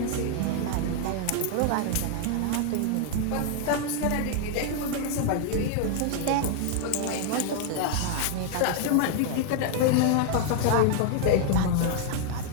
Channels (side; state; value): both; different; correlation 0.00